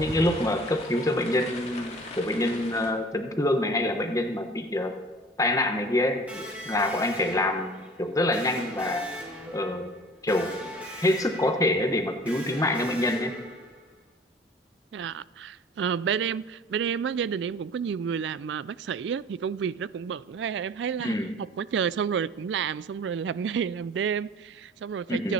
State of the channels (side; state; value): both; normal; correlation 0.46